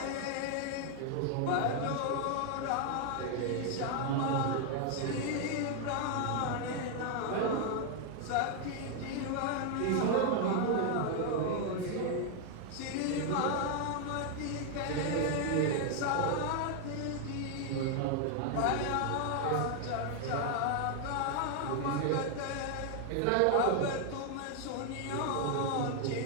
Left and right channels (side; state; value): both; different; correlation 0.00